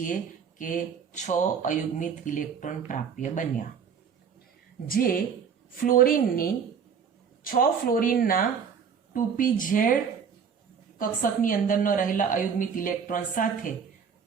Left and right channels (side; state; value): left; quieter; 6.7 dB